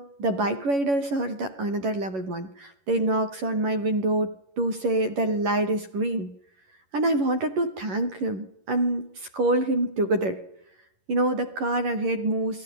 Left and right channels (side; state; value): left; late; 11 ms